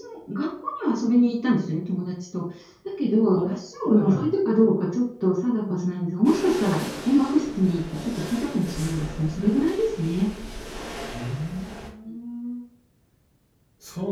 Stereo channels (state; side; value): identical; both; correlation 1.00